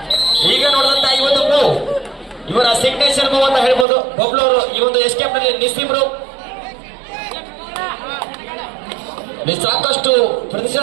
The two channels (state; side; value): drops out; left; at 3.9 s